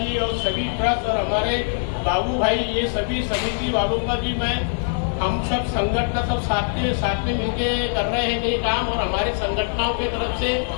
और सभी ट्रस्ट और हमारे बाबू भाई, ये सभी समिति वालों का भी मैं, हम सब संगठन सब साथ में मिलके कर रहे हैं ये काम। और हमारे संगठनों की तरफ से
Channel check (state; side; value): silent; right; 64 dB below the other